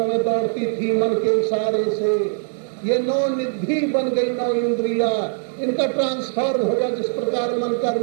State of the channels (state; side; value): silent; left; digital silence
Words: में दौड़ती थी मन के इशारे से। ये नौ निधि बन गई, नौ इंद्रिया, इनका ट्रांसफॉर्म हो गया जिस प्रकार मन का